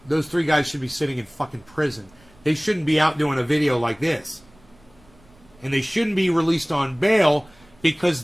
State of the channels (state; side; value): noise; right; rumble, 29 dB below the sound